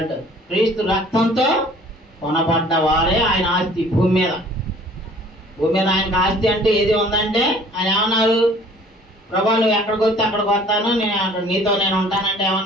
క్రీస్తు రక్తంతో కొనబడ్డ వారే ఆయన ఆస్తి భూమి మీద. భూమి మీద ఆయనకు ఆస్తి అంటే ఏది ఉందంటే ఆయన ఏమన్నాడు, ప్రభా నువ్వు ఎక్కడికి వస్తే అక్కడికి వస్తాను, నేను అక్కడ నీతో నేను ఉంటానంటే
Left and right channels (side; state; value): both; normal; correlation 0.52